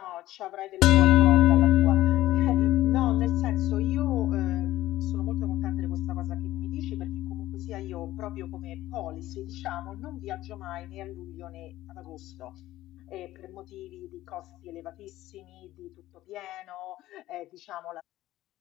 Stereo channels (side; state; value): right; quieter; 15.4 dB